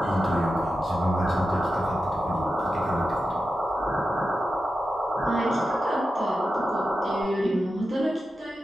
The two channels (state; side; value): normal; both; correlation 0.91